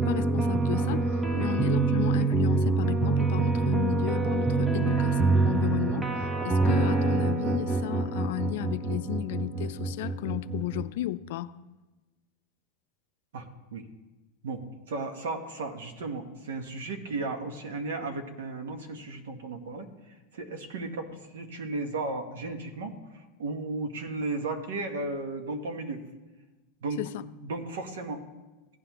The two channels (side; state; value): both; normal; correlation 0.44